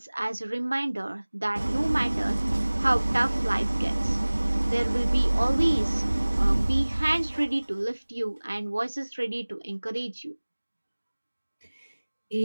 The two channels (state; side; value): inverted; both; correlation -1.00